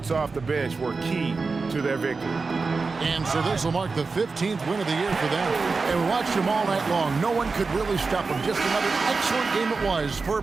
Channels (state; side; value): quieter; left; 4.3 dB